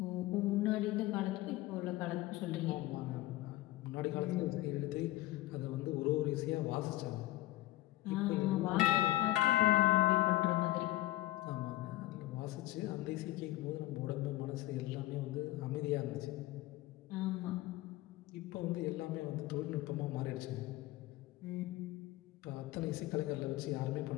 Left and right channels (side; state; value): right; quieter; 17.2 dB